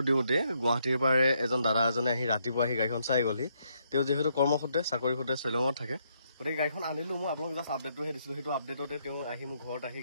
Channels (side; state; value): both; inverted; correlation -0.74